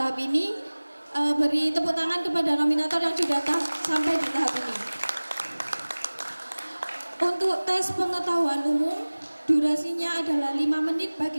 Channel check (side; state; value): both; inverted; correlation -1.00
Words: ini. Beri tepuk tangan kepada nominator yang sudah sampai di tahap ini. Untuk tes pengetahuan umum, durasinya adalah 5 menit bagi